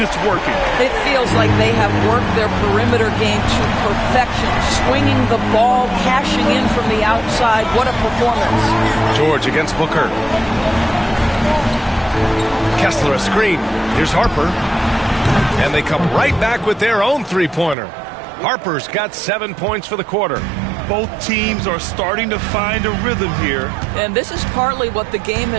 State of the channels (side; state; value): left; drops out; at 17.8 s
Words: it's working. It feels like they have worked their perimeter game to perfection, swinging the ball, cashing in from the outside. What a performance. George against Booker. Kessler a screen. Here's Harper. And they come right back with their own three-pointer. Harper's got 7 points for the quarter. Both teams are starting to find a rhythm here. And this is partly what the game